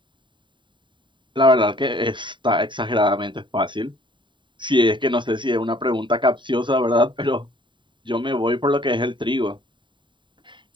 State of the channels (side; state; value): left; late; 0.23 ms